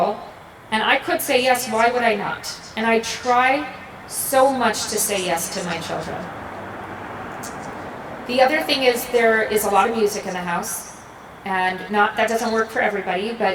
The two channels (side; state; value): both; identical; correlation 1.00